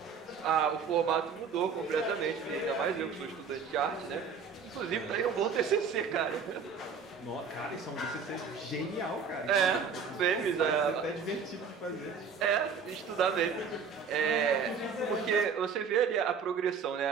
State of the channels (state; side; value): quieter; left; 5.9 dB